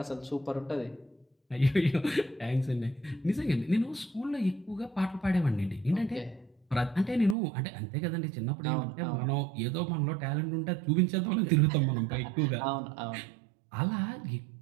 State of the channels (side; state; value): left; drops out; at 7.4 s